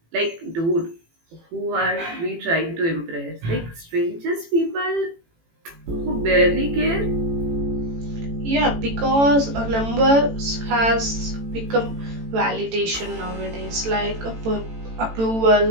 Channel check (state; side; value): late; left; 18 ms